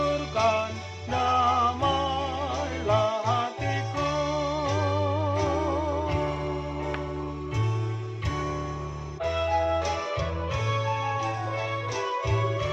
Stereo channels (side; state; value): both; identical; correlation 1.00